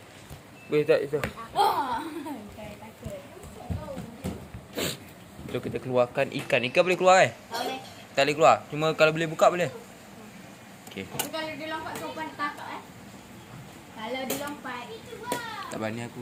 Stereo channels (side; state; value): both; identical; correlation 1.00